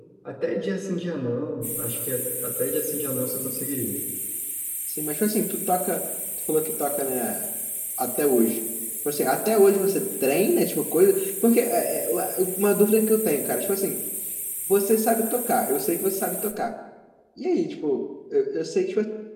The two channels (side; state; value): both; identical; correlation 1.00